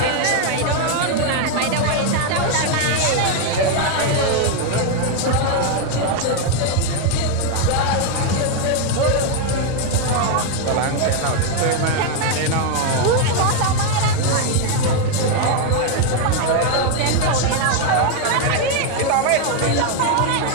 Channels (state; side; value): different; both; correlation 0.01